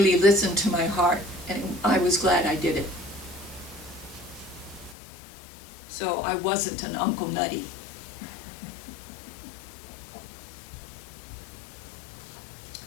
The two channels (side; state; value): right; drops out; at 5.0 s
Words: listened to my heart, and I was glad I did it. So I wasn't an Uncle Nutty.